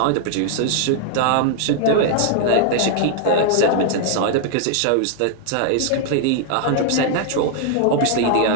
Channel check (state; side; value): different; both; correlation 0.00